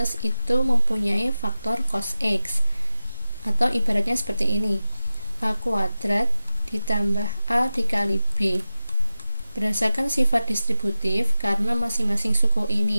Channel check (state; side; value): inverted; both; correlation -0.95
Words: itu mempunyai faktor cos X, atau ibaratnya seperti ini, A kuadrat ditambah A dikali B. Berdasarkan sifat distributif, karena masing-masing suku